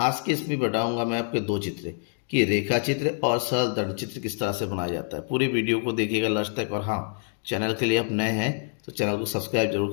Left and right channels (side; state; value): right; silent; 59 dB below the other